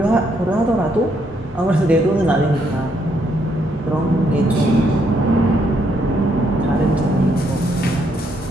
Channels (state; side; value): normal; both; correlation 0.73